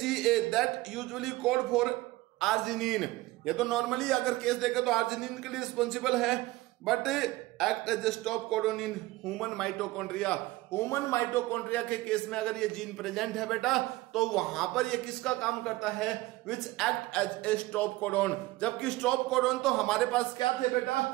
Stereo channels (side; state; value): left; quieter; 19.3 dB